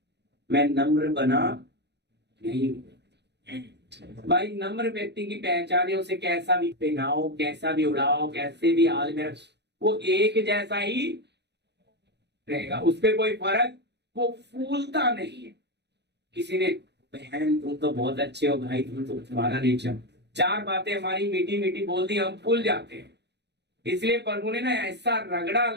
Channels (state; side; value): late; left; 0.50 ms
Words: मैं नम्र बना नहीं हूं। भाई, नम्र व्यक्ति की पहचान है, उसे कैसा भी पहनाओ, कैसा भी उड़ाओ, कैसे भी हाल में, वो एक जैसा ही रहेगा, उस पर कोई फर्क, वो फूलता नहीं है। किसी ने, बहन तुम तो बहुत अच्छे हो, भाई तुम तो, तुम्हारा नेचर, 4 बातें हमारी मीठी मीठी बोल दी, हम फूल जाते हैं। इसलिए प्रभु ने ना ऐसा रगड़ा